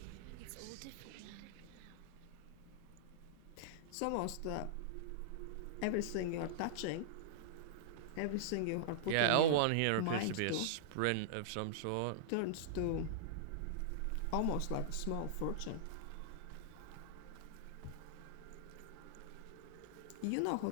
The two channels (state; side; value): different; both; correlation -0.02